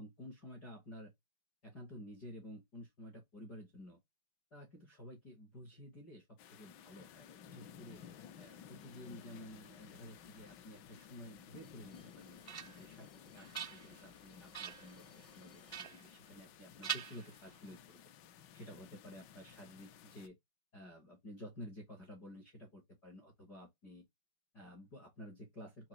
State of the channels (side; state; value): right; late; 5.4 ms